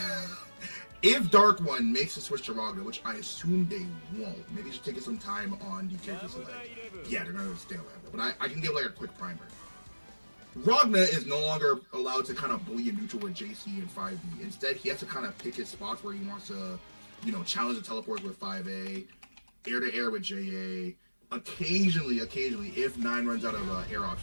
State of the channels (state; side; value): inverted; both; correlation -1.00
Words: if DarkOne makes a switch to Ragna, which I assume they won't, maybe just taking some time on the character select. Yeah, they're gonna stay on Lambda, but I can give like a quick primer. Ragna is no longer allowed to kind of bully a neutral with JC and 5B. Instead, he has to kind of pick his spots where he wants to, you know, challenge the teleports with 5A, air to air with JA. Occasionally, if 9 runs out of air